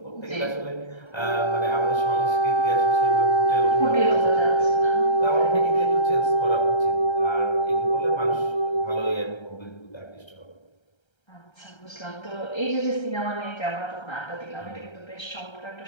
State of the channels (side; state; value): right; late; 1.3 ms